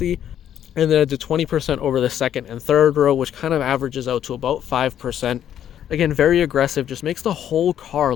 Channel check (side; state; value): right; quieter; 10.2 dB